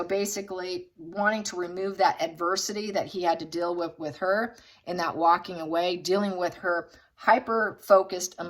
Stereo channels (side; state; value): both; identical; correlation 1.00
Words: basically, wanting to remove that adversity that he had to deal with her, and that walking away, dealing with her hyper-focused